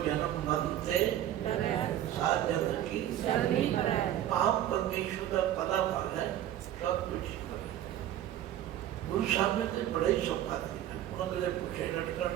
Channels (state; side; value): quieter; left; 11.9 dB